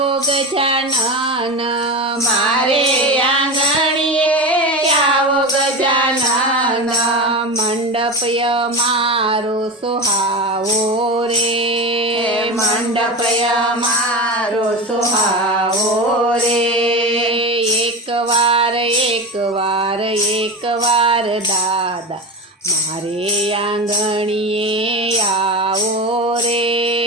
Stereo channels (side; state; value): both; normal; correlation 0.23